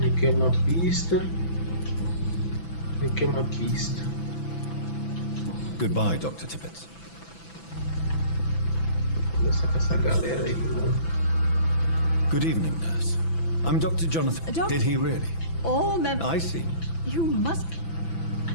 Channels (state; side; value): late; right; 6.0 ms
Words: Aqui é uma pista. Aqui é uma pista. Goodbye, Dr. Tippett. Conversar com essa galera aí, mano. Good evening, nurse. I'm Dr. Jonathan. Did he really? All members. I see. You must.